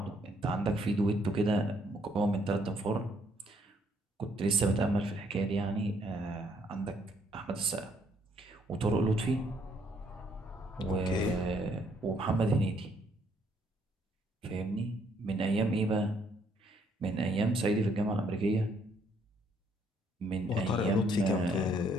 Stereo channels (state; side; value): normal; both; correlation 0.68